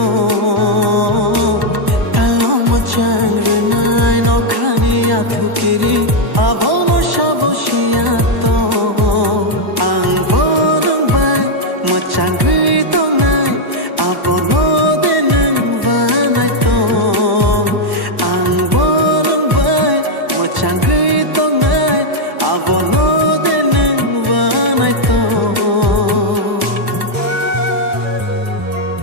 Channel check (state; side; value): late; left; 1.1 ms